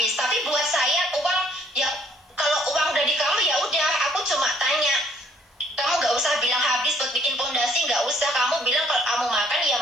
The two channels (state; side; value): normal; both; correlation 0.63